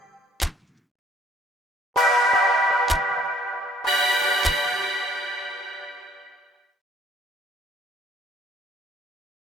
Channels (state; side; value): normal; both; correlation 0.62